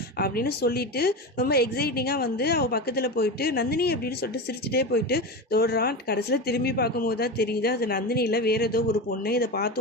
அப்படின்னு சொல்லிட்டு ரொம்ப எக்ஸைட்டிங்காக வந்து அவள் பக்கத்தில் போயிட்டு நந்தினி அப்படின்னு சொல்லிட்டு சிரிச்சுட்டே போயிட்டு தோடுறான். கடைசியில் திரும்பி பார்க்கும்போது தான் தெரியுது அது நந்தினி இல்லை, வேறு ஏதோ ஒரு பொண்ணு. இதை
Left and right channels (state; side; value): normal; both; correlation 0.22